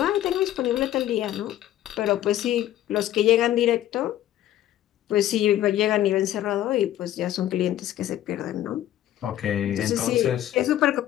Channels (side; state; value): right; quieter; 12.8 dB